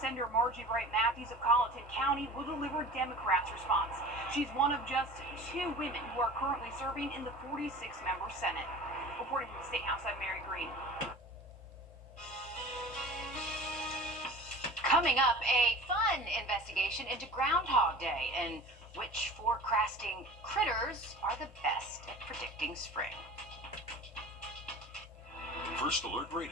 Senator Margie Bright Matthews of Colleton County will deliver Democrats' response. She's one of just 2 women who are currently serving in the 46-member Senate. Reporting from the State House, I'm Mary Green. Coming up, a fun investigation into Groundhog Day and which forecasting critters are the best at predicting spring. First Alert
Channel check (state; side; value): normal; both; correlation 0.40